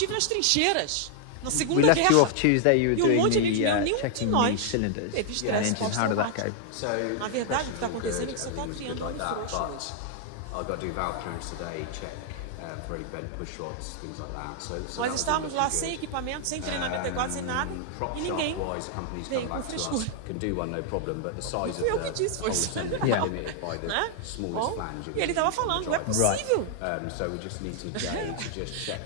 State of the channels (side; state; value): both; different; correlation 0.00